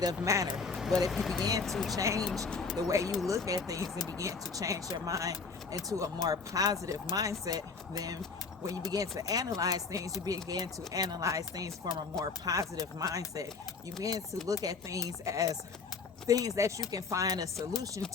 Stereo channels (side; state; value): right; quieter; 4.8 dB